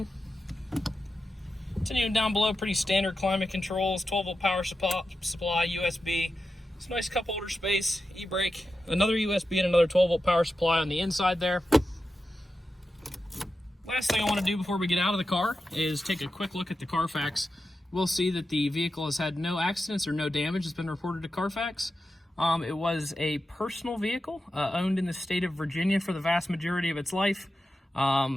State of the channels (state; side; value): normal; both; correlation 0.90